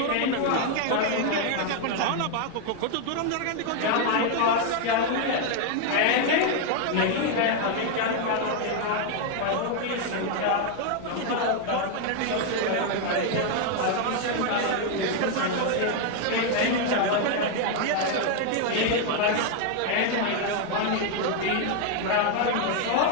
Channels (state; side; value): different; both; correlation 0.01